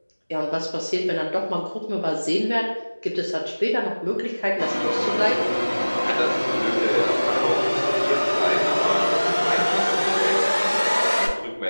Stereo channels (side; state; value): both; inverted; correlation -1.00